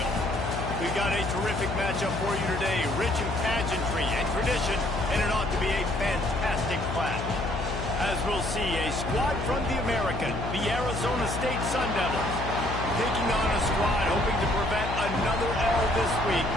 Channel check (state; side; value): noise; left; hum, 5 dB below the sound